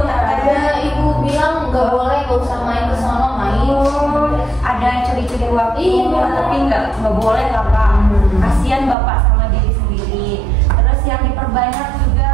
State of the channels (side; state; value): left; drops out; at 9.0 s